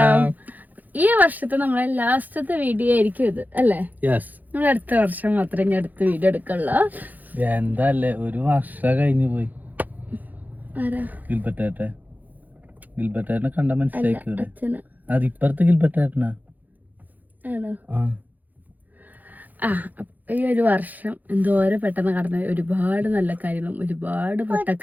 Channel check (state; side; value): late; left; 0.083 ms